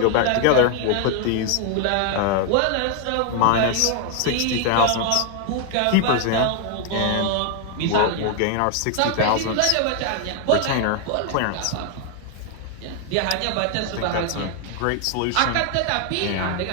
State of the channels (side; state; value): both; different; correlation 0.00